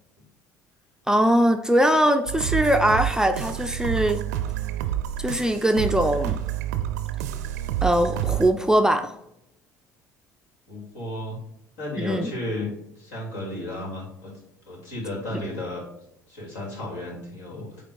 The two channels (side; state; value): both; normal; correlation 0.73